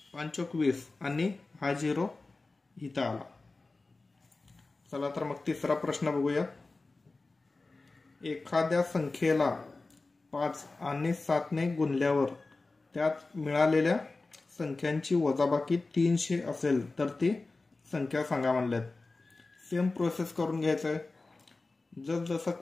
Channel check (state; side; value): quieter; right; 3.5 dB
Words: 5 चौक 20 आणि हा 0 इथं आला. चला तर मग तिसरा प्रश्न बघूया. एखाद्या संख्येला 5 आणि 7 ने गुणल्यावर त्यात मिळालेल्या संख्यांची वजाबाकी 300 असेल तर ती संख्या सांगा म्हणल्यात. सेम प्रोसेस करून घ्यायचं आहे. जसं